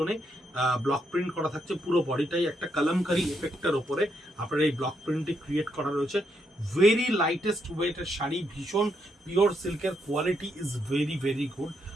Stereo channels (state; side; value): normal; both; correlation 0.78